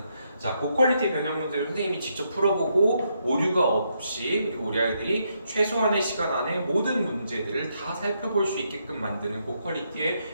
자, 고퀄리티 변형 문제를 선생님이 직접 풀어보고 오류가 없이, 그리고 우리 아이들이 최소한의 시간 안에 모든 문제들을 다 살펴볼 수 있게끔 만드는 고퀄리티의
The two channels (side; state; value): both; inverted; correlation -0.78